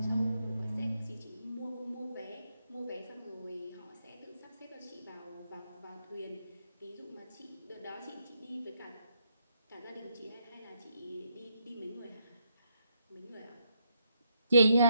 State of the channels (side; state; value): both; inverted; correlation -0.77